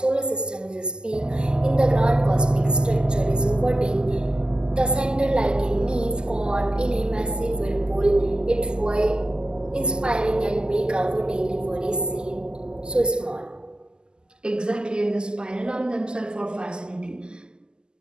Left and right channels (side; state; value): left; late; 0.046 ms